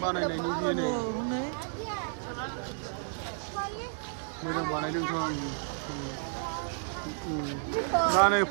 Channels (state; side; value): silent; left; digital silence